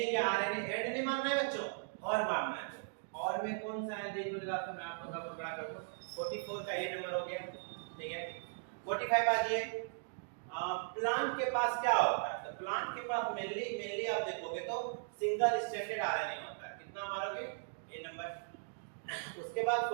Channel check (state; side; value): silent; left; digital silence